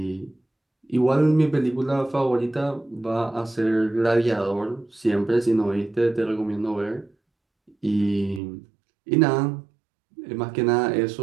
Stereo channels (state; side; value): drops out; left; at 8.4 s